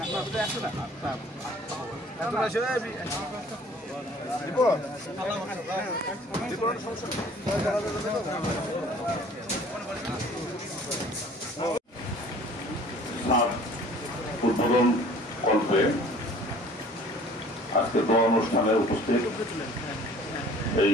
উদ্বোধন কল্পে আজকে দোয়া অনুষ্ঠানে উপস্থিত এই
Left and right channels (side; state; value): both; normal; correlation 0.51